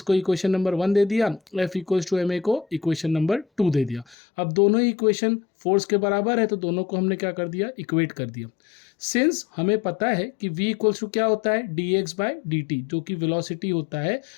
इक्वेशन नंबर 1 दे दिया, F equals to m a को इक्वेशन नंबर 2 दे दिया। अब दोनों ही इक्वेशन फोर्स के बराबर है तो दोनों को हमने क्या कर दिया, इक्वेट कर दिया। सिंस हमें पता है कि V इक्वल्स टू क्या होता है, dx बाय dt, जो कि वेलोसिटी होता है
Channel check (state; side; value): drops out; right; at 4.2 s